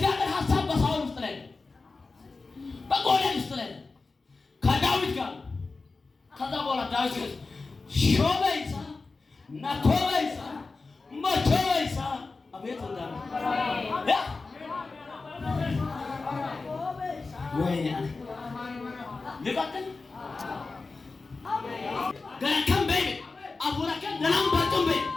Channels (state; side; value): quieter; right; 3.9 dB